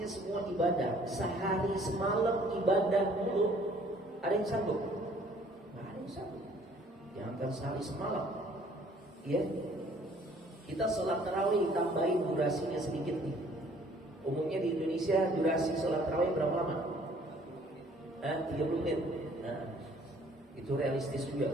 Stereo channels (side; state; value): both; normal; correlation 0.58